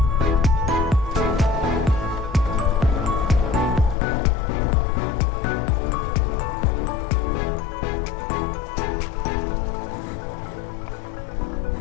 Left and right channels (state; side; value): drops out; right; at 4.0 s